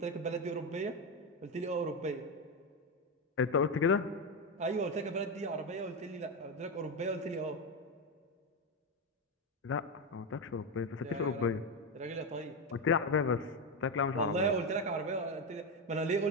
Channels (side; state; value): both; normal; correlation 0.11